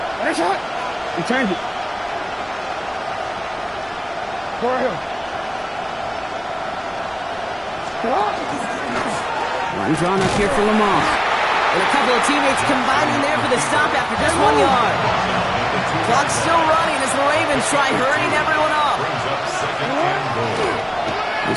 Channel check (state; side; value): identical; both; correlation 1.00